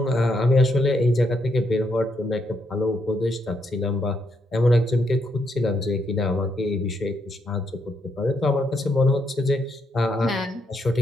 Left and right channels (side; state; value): both; normal; correlation 0.77